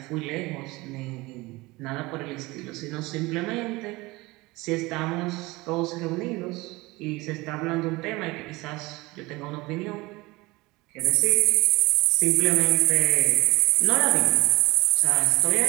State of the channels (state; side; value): quieter; left; 21.9 dB